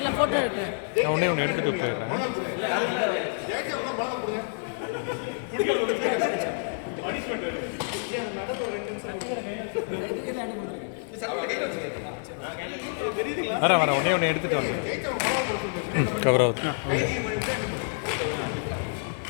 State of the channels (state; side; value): silent; right; 59 dB below the other